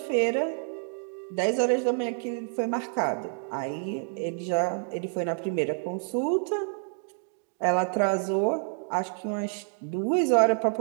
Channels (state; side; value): silent; left; 55 dB below the other